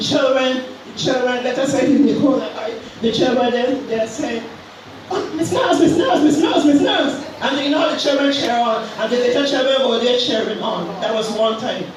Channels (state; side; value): identical; both; correlation 1.00